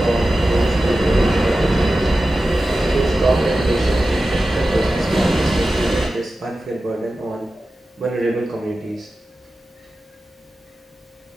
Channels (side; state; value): both; normal; correlation 0.94